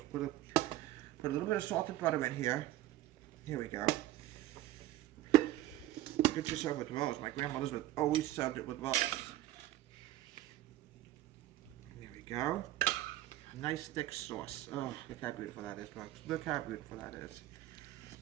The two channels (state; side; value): quieter; left; 14.6 dB